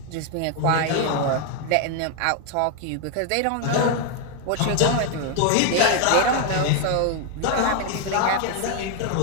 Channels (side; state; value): both; different; correlation 0.01